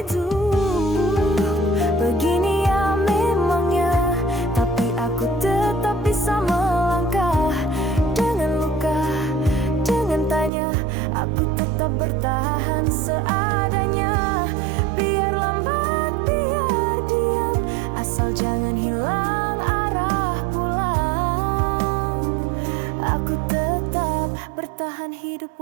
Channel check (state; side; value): drops out; left; at 10.5 s